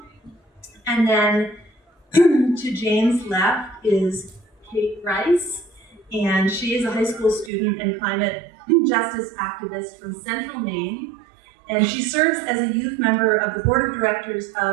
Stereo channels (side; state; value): left; drops out; at 7.5 s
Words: And then to Jane's left is Kaethe Rice, and she is a high school student and climate justice activist from Central Maine. And she serves as a youth member of the board of directors